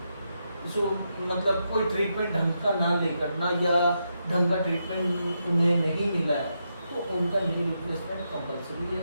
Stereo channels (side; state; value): both; inverted; correlation -0.83